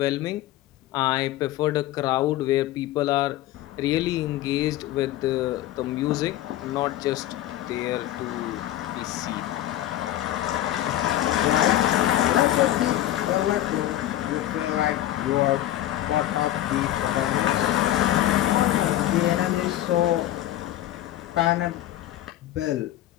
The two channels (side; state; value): right; quieter; 13.6 dB